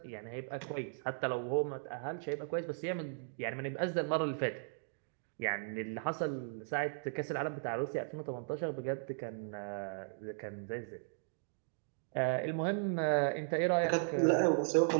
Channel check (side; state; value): left; silent; digital silence